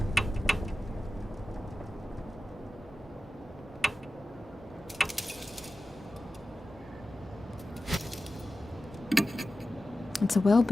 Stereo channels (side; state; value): both; normal; correlation 0.94